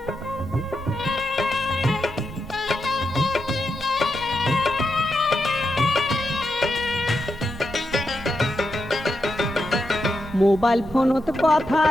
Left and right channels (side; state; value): both; normal; correlation 0.86